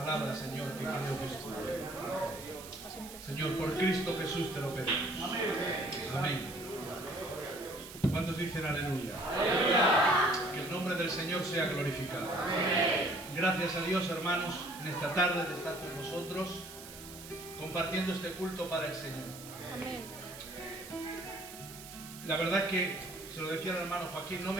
Señor, que creo que es tuya. Señor, por Cristo Jesús te lo pedimos. Amén. ¿Cuántos dicen aleluya? Que el nombre del Señor sea glorificado. Gracias a Dios, hermanos, en esta tarde de estar con vosotros, compartiendo este culto para el Señor. Amén. La verdad es que, se lo decía al hermano Joaquín, no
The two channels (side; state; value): right; noise; hiss, 14 dB below the sound